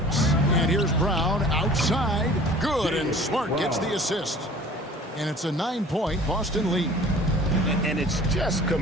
And here's Brown outside. Good, and Smart gets the assist. And it's a 9-point Boston lead. And it's just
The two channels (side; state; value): both; normal; correlation 0.46